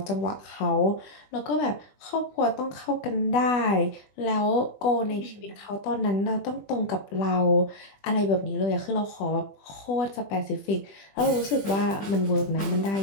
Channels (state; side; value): late; right; 20 ms